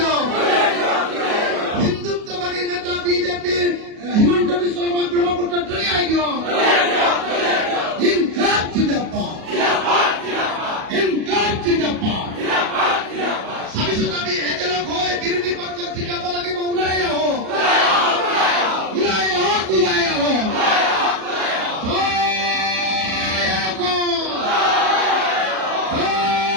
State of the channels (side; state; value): left; late; 37 ms